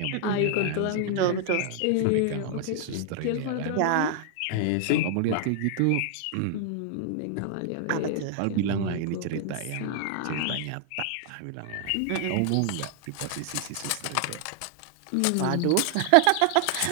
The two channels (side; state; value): both; different; correlation 0.00